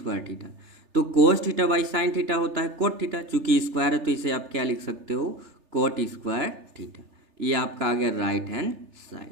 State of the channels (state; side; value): late; left; 3.3 ms